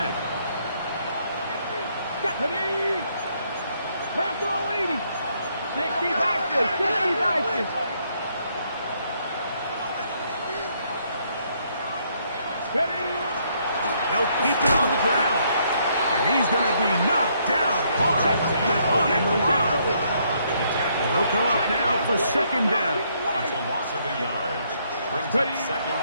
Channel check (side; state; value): both; inverted; correlation -0.71